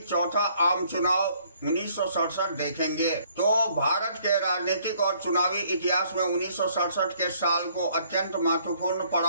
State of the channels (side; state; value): both; inverted; correlation -0.63